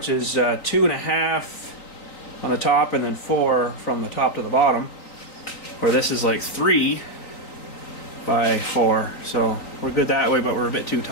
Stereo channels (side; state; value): right; late; 3.9 ms